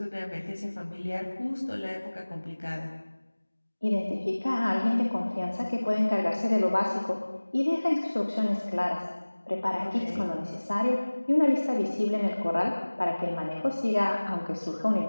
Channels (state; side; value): inverted; both; correlation -1.00